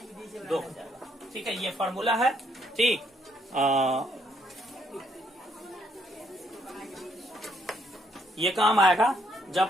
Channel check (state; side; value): normal; both; correlation 0.71